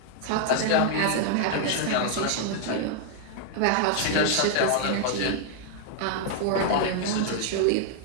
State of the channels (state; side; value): different; both; correlation 0.00